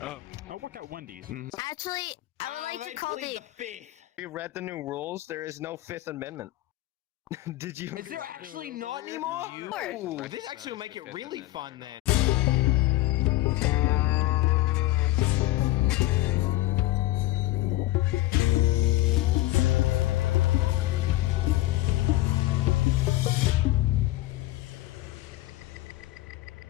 work at Wendy's. Actually, I would like to call the... fifth. We read the new rules. There is no Fifth Amendment. Did you? Is there actually not anymore? Ooh, Ooh, this actually will make it really fun then.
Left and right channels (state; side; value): quieter; right; 16.6 dB